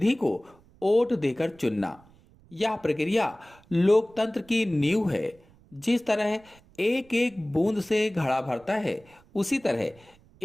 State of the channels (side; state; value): right; noise; rumble, 28 dB below the sound